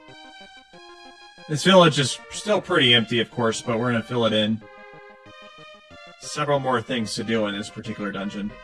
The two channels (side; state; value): both; identical; correlation 1.00